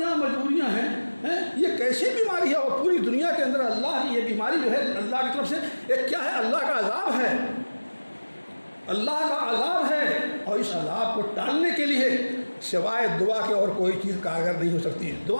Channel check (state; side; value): inverted; both; correlation -1.00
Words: مجبوریاں ہیں. یہ کیسی بیماری ہے, اور پوری دنیا کے اندر اللہ کی یہ بیماری جو ہے اللہ کی طرف سے ایک کیا ہے, اللہ کا عذاب ہے, اللہ کا عذاب ہے. اور اس عذاب کو ٹالنے کے لیے سوائے دعا کے اور کوئی چیز کارگر نہیں ہو سکتی.